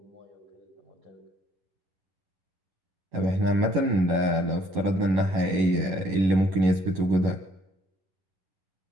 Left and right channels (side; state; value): left; late; 11 ms